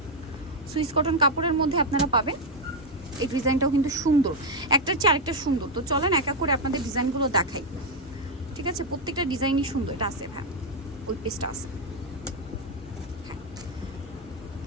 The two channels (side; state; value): both; normal; correlation 0.02